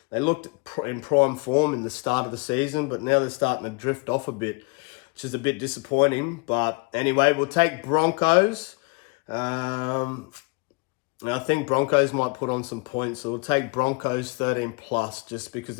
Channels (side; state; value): right; quieter; 29.6 dB